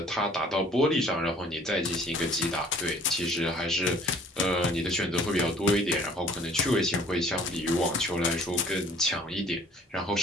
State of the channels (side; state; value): both; normal; correlation 0.54